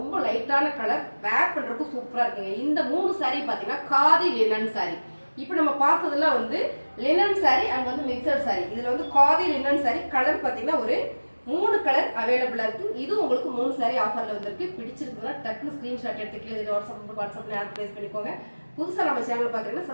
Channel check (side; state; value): both; inverted; correlation -1.00